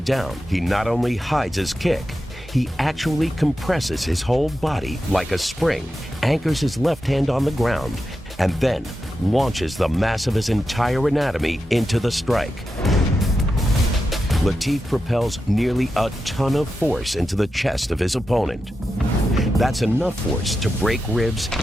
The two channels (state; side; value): normal; both; correlation 0.89